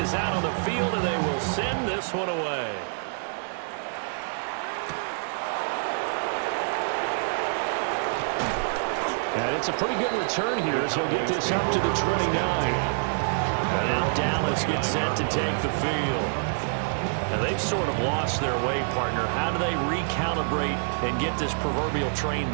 Out on the field, and they will send this one away. And it's a pretty good return here as he'll get this up to the 29. And now Dallas gets set to take the field. And they've sort of lost their way, partner. How do they recalibrate and get this proverbial train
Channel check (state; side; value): silent; left; digital silence